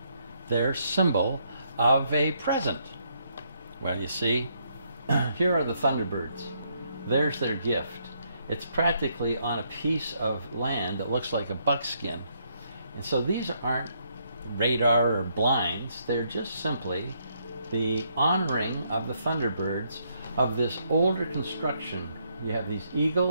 their symbol of a present. Well, you see, here are the Thunderbirds. There's their gift. It's practically on a piece of land that looks like a buckskin. And so these aren't radar or blinds. They're just simply the honoring of the Thunderbirds of this older construction. You have these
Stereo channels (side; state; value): both; inverted; correlation -0.74